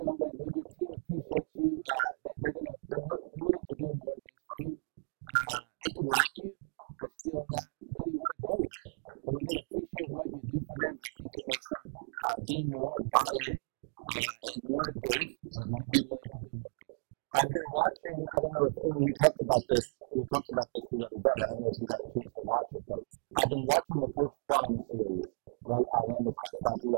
your team appreciates you, they're willing to do more things for you. They could like you, but still not really want to grow with you. But when they appreciate what you do for them, I think it makes them be more bought in and more engaged and be willing to do more things. I've been watching, I don't know if we talked about this the other day. I don't know if you got a chance to watch it, but I've been watching the Coach Prime series, right, on Amazon about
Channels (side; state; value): left; silent; digital silence